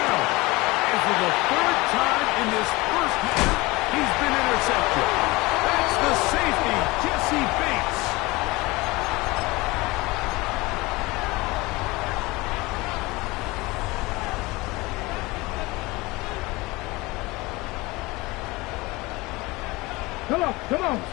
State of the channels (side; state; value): right; quieter; 22.4 dB